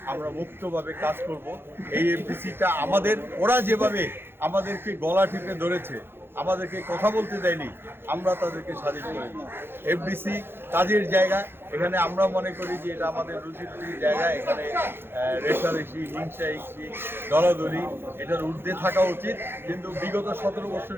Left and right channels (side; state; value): left; late; 0.11 ms